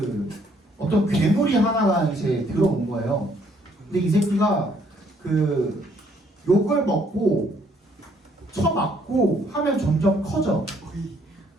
어떤 괴물이 하나가 이제 들어온 거예요. 근데 이 새끼가 그 욕을 먹고 쳐맞고 하면 점점 커져.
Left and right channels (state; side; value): normal; both; correlation 0.66